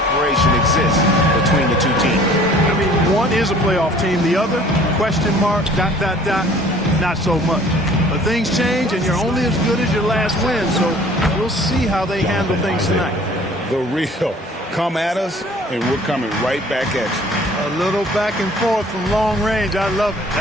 exists between the two teams. I mean, one is a playoff team. The other, question mark, ... not so much. But things change, and you're only as good as your last win. So we'll see how they handle things tonight. The real come at us, and we're coming right back at you. A little back and forth from long range. I love it.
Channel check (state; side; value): normal; both; correlation 0.52